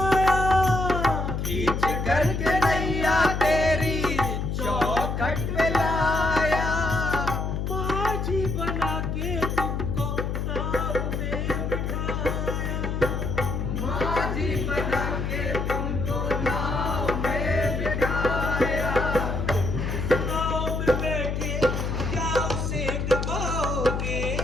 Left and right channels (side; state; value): left; noise; hum, 2 dB below the sound